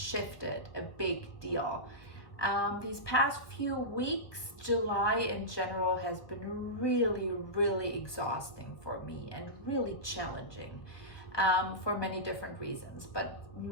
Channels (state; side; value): late; right; 1.2 ms